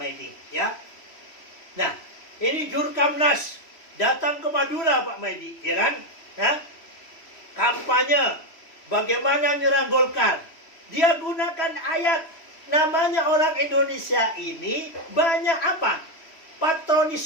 Maidi, ya. Nah, ini Jurkamnas datang ke Madura Pak Maidi, ya kan? Ya? Kampanye bagaimana nyerang Golkar. Dia gunakan ayat. Namanya orang Indonesia ini banyak apa?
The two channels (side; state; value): right; late; 3.1 ms